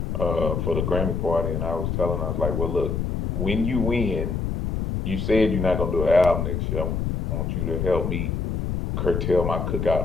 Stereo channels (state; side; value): noise; left; rumble, 1 dB below the sound